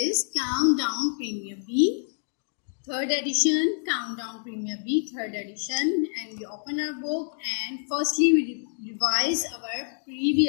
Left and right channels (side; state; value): right; silent; digital silence